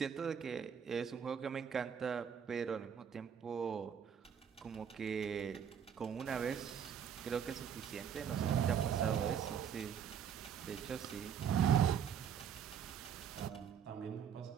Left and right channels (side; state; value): left; quieter; 8.0 dB